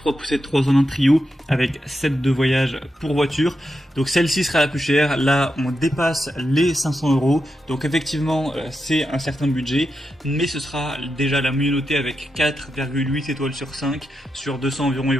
poussettes 3 en 1 trio avec set de voyage pour voiture. Donc celle-ci sera la plus chère. Là, on dépasse les 500 €. Donc effectivement, c'est un certain budget, mais ce sera déjà la mieux notée avec 4,8 étoiles sur 5 sur 200 environ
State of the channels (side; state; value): both; normal; correlation 0.87